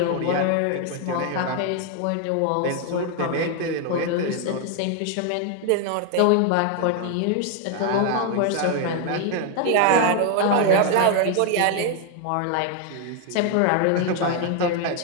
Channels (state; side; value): different; both; correlation 0.00